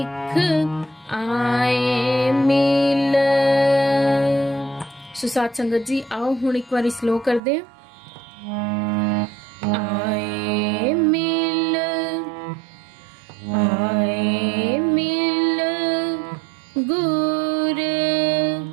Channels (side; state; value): left; drops out; at 7.4 s